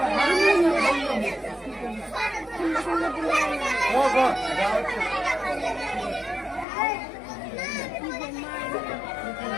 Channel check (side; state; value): right; drops out; at 6.7 s